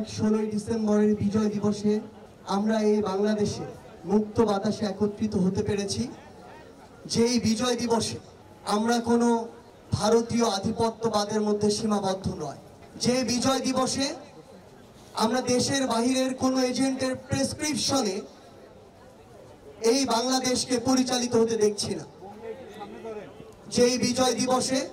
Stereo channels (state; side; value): identical; both; correlation 1.00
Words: 16ই ডিসেম্বরের বিজয় দিবসে আমরা এই বাংলাদেশে মুক্ত বাতাসে একত্রিত হতে পেরেছি। যেই বিজয় দিবসে আমরা কোনো ভারতীয় আধিপত্যবাদের মধ্যে সীমাবদ্ধ নয়। যে বিজয় দিবসে আমরা দেশের বাহিরের কোনো এজেন্টের প্রেসক্রিপশনে এই বাংলাদেশকে পরিচালিত হতে দেখছি না। যেই বিজয় দিবসে